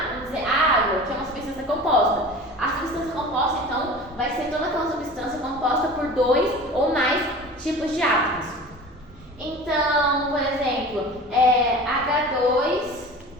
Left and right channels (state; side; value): normal; both; correlation 0.38